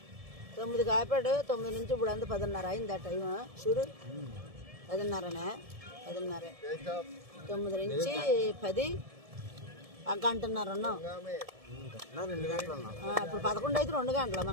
9కి ఆపాడు. 9 నుంచి ఇప్పుడు అంతా 10:30 అయింది. ఆ టైం చూడు, 10:30నే. 10:30. 9 నుంచి 10 గంటన్నర ఉన్నాం. ఇప్పుడు 11 అయితే 2 గంటల.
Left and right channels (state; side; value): late; left; 1.7 ms